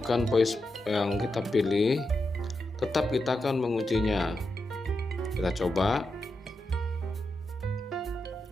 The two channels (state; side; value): normal; both; correlation 0.87